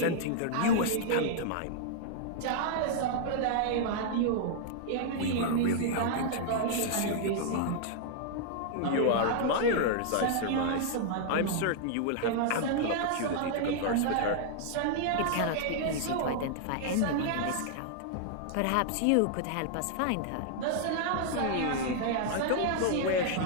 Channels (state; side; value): different; both; correlation -0.01